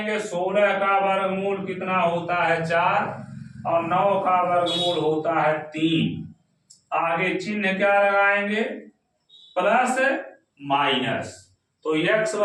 16 का वर्गमूल कितना होता है 4 और 9 का वर्गमूल होता है 3। आगे चिन्ह क्या लगाएंगे प्लस माइनस, तो x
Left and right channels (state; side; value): identical; both; correlation 1.00